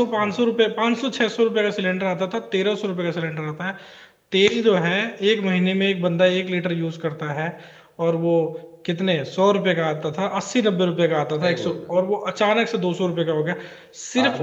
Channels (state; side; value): identical; both; correlation 1.00